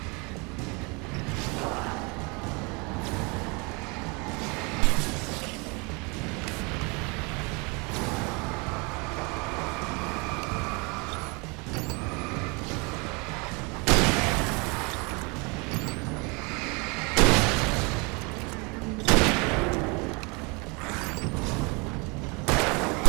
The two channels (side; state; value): left; quieter; 29.7 dB